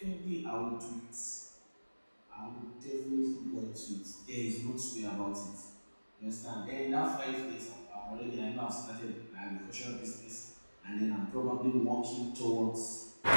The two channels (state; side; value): inverted; both; correlation -1.00